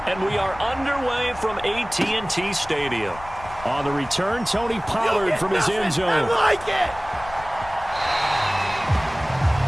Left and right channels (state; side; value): noise; left; rumble, 17 dB below the sound